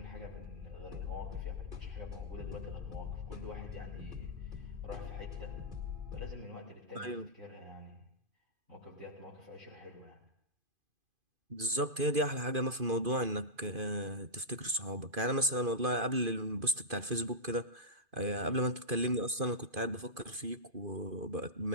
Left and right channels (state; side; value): late; left; 2.5 ms